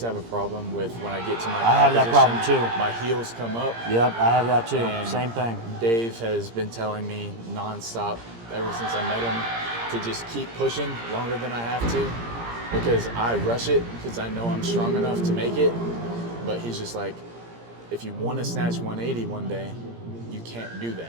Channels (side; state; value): left; late; 17 ms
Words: have a problem with when I get to my I have that problem position, too. my heels come up. Yep, I have that too. And Same thing. Dave has been telling me nonstop ever since I met him to just keep pushing longer than I have to, because I rush it because I know I'm strong enough to make it. But he's just like, if you want to snatch 180 one day, you can't do